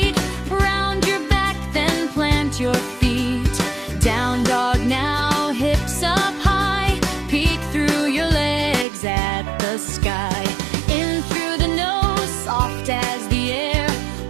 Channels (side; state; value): left; drops out; at 8.8 s